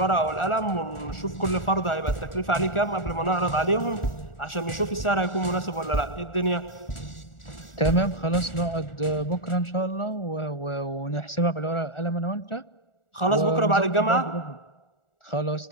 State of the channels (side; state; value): right; late; 1.4 ms